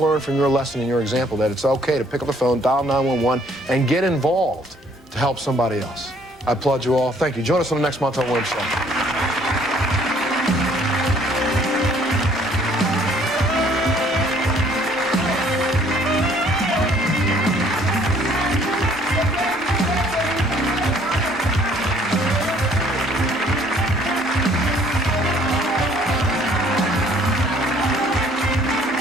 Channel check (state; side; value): normal; both; correlation 0.60